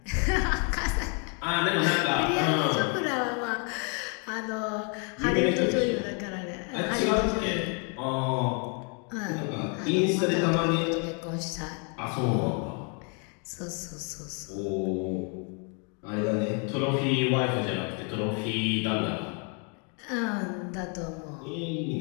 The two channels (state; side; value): quieter; right; 37.4 dB